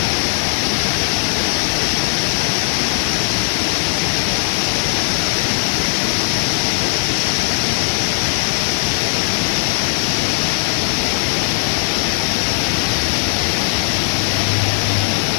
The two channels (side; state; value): right; silent; 61 dB below the other